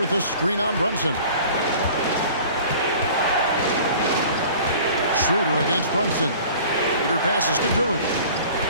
a screen on Brunson. Schroeder against Brunson. Schroeder passes to Duren.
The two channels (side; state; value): both; inverted; correlation -0.46